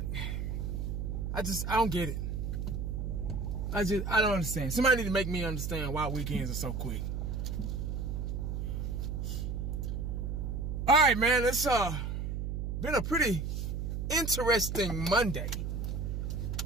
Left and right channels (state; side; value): noise; right; hum, 2 dB below the sound